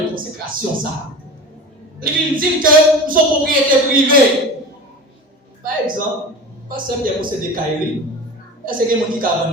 consécration ça. Les vignes disent que nous sommes propriété privée. Par exemple, pas seulement pour posséder Kairi, est-ce qu'il y a des gens qui ont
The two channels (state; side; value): normal; both; correlation 0.33